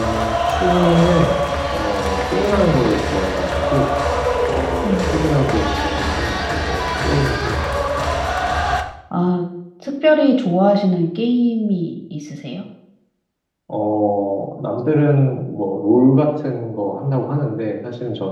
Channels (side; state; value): both; identical; correlation 1.00